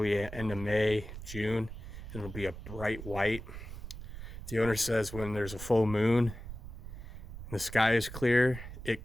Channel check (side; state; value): right; noise; rumble, 11 dB below the sound